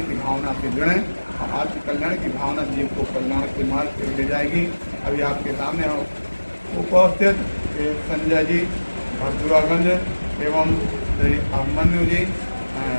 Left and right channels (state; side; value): inverted; both; correlation -1.00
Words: की भावना से जुड़ें, और आत्म कल्याण की भावना जीव को कल्याण के मार्ग पर ले जाएगी। अभी आपके सामने उपस्थित संजय जी भरदुरागंज एवं श्री अभिमन्यु जी